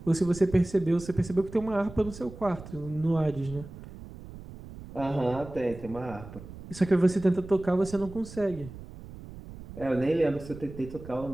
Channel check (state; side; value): noise; right; rumble, 15 dB below the sound